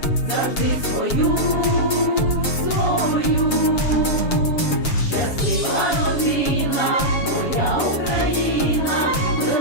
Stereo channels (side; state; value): right; late; 7.4 ms